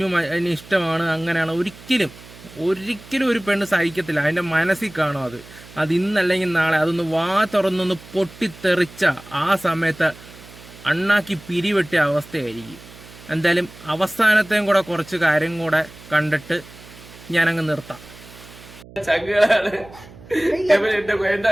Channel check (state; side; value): noise; right; hum, 20 dB below the sound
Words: അതിന് ഇഷ്ടമാണ് അങ്ങനെയാണ് ഒരിക്കലും ഒരു പെണ്ണ് സഹിക്കത്തില്ല. അതിൻ്റെ മനസ്സിൽ കാണും അത് ഇന്നല്ലെങ്കിൽ നാളെ അതൊന്ന് വാ തുറന്നൊന്ന് പൊട്ടിത്തെറിച്ച ആ സമയത്ത് അണ്ണാക്കി പിരിവെട്ടിയ അവസ്ഥയായിരിക്കും. എന്തായാലും അവസാനത്തെയും കൂടെ കുറച്ച് കാര്യം കൂടെ കണ്ടിട്ട് ഞാനങ്ങ് നിർത്താം. ചങ്ങാണ്